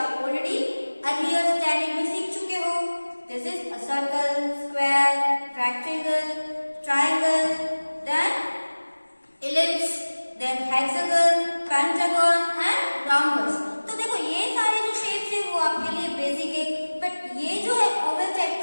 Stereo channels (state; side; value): inverted; both; correlation -1.00